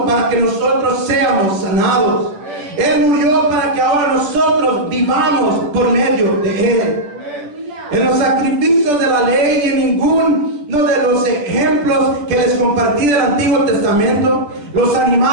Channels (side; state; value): left; late; 10 ms